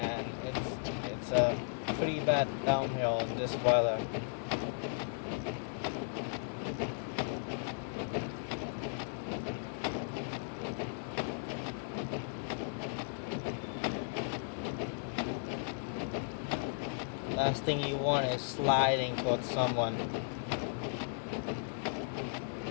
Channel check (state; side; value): silent; right; digital silence